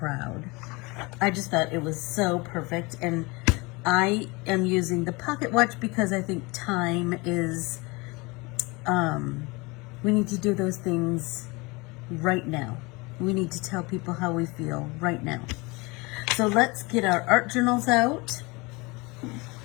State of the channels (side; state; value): right; quieter; 25.7 dB